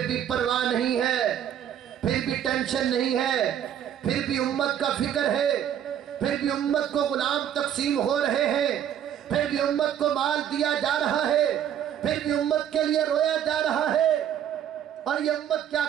بھی پرواہ نہیں ہے، پھر بھی ٹینشن نہیں ہے، پھر بھی امت کا فکر ہے، پھر بھی امت کو غلام تقسیم ہو رہے ہیں، پھر بھی امت کو مال دیا جا رہا ہے، پھر بھی امت کے لیے رویا جا رہا ہے۔ اور یہ امت کیا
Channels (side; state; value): left; quieter; 9.9 dB